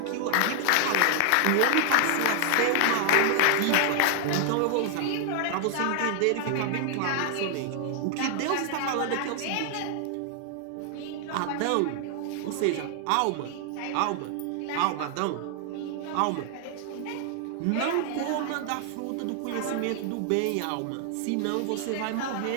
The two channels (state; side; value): different; both; correlation 0.00